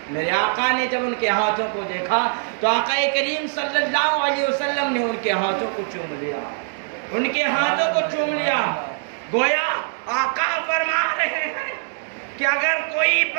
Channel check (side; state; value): left; silent; digital silence